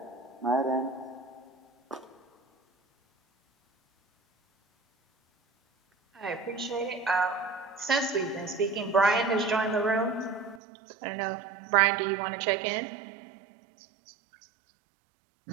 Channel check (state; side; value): drops out; left; at 10.6 s